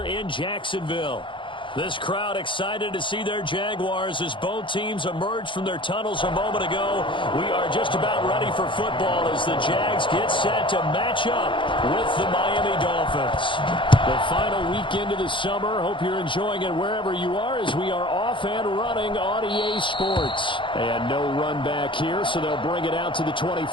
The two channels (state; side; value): late; right; 0.24 ms